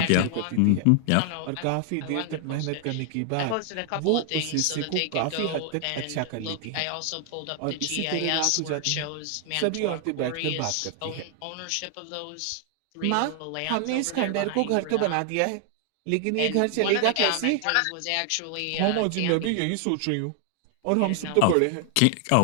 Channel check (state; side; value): different; both; correlation 0.00